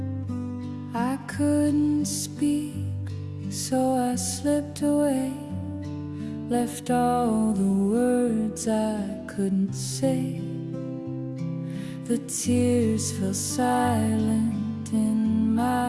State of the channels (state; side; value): identical; both; correlation 1.00